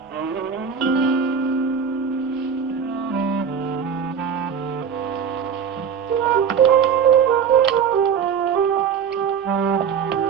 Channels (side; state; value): left; quieter; 7.2 dB